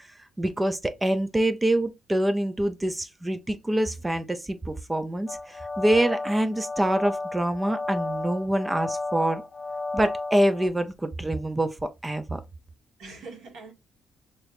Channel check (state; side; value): normal; both; correlation 0.96